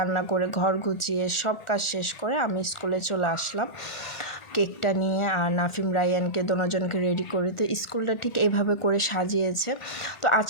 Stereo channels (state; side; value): late; right; 1.5 ms